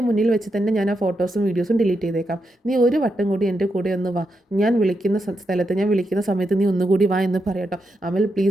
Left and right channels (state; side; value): normal; both; correlation 0.84